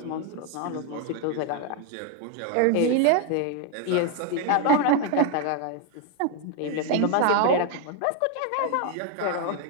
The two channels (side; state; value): both; different; correlation 0.01